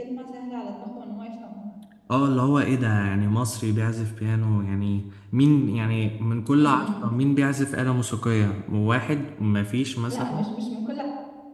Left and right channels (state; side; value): identical; both; correlation 1.00